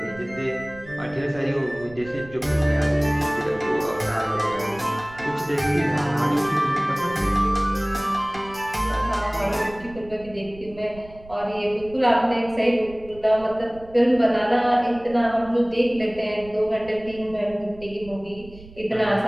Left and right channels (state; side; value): noise; right; rumble, 20 dB below the sound